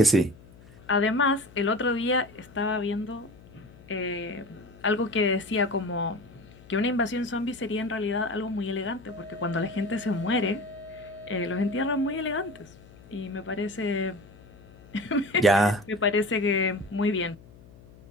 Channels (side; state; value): left; noise; hum, 22 dB below the sound